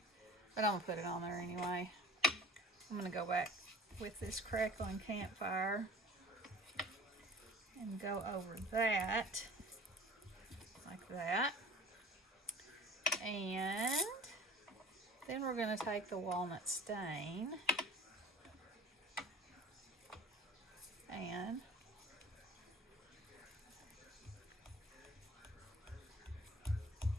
but I'm going to put it on there anyway. I'm going to go back with this crackling campfire and go over that, like that. And then we're going to take the walnut stain and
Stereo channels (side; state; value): both; normal; correlation 0.44